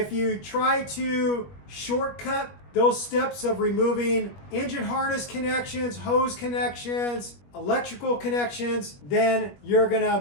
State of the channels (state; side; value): late; right; 21 ms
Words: you try to shortcut those steps of removing engine harness connections, hose connections, electrical connections, then you're gonna